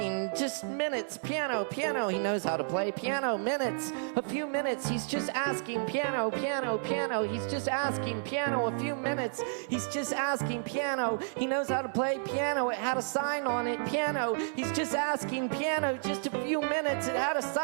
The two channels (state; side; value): silent; left; 57 dB below the other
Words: just minutes, piano, piano. He knows how to play piano, minutes, a few minutes. He's just asking, piano, piano, piano. He's just asking, piano, a few minutes. He's just asking, piano. He knows how to play piano. It had a sign on it, piano. He's just asking, piano, just a few minutes. It had a